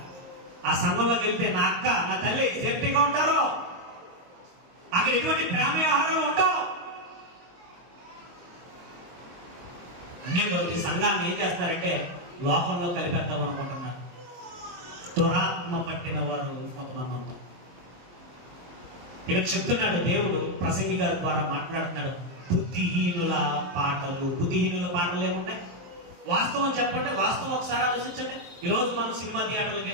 ఆ సంఘంలోకి వెళ్తే నా అక్క, నా తల్లి సేఫ్టీగా ఉంటారు. అక్కడ ఎటువంటి ప్రేమ వ్యవహారాలు ఉండవు. అన్ని సంఘాన్ని ఏం చేస్తారంటే లోకంలో కలిపేద్దాం అనుకుంటున్నారు. దురాత్మ పట్టిన వాడు కొంతమంది ఉంటారు. ఇక్కడ చెప్తున్నాడు దేవుడు, ప్రసంగి గారి ద్వారా మాట్లాడుతున్నాడు. బుద్ధిహీనుల పాటలు. బుద్ధిహీనుల పాటలు ఏమున్నాయి? వాస్తవం చెప్పండి, వాస్తవం ఒకసారి ఆలోచించండి. ఈరోజు మనం సినిమా థియేటర్లకు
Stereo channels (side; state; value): left; late; 22 ms